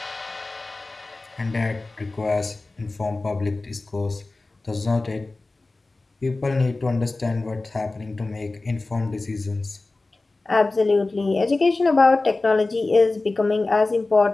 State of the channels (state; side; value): quieter; right; 3.3 dB